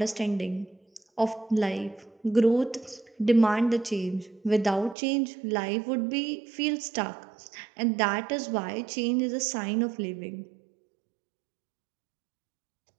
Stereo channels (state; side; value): drops out; left; at 5.0 s